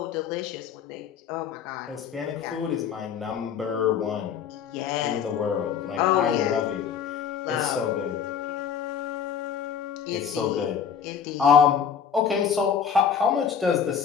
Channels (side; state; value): right; quieter; 7.6 dB